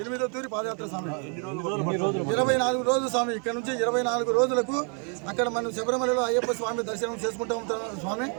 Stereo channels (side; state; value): left; quieter; 39.3 dB